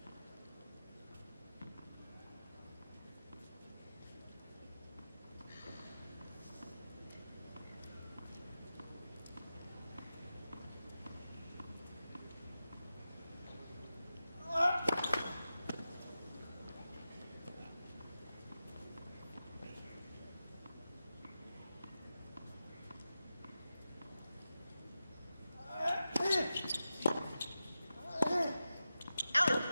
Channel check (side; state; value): both; inverted; correlation -0.91